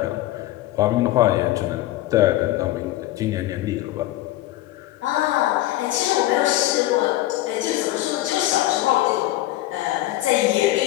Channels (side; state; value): right; quieter; 15.8 dB